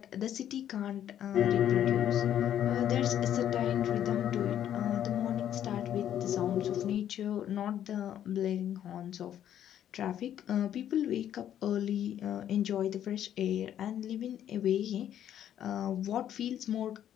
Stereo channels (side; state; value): right; quieter; 10.6 dB